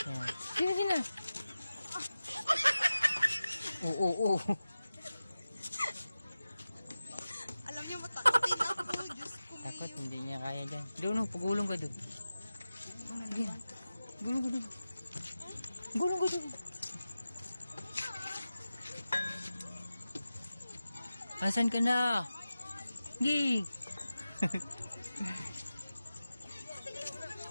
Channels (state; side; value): inverted; both; correlation -0.95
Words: Yan. Sina. Oo. Alam niyo, matakotin ako. Diyos ko. Takot, hindi niya kaya dyan. Doon, pagulong ka doon. Sige. Gulong ka doon. Asan ka na? Gi.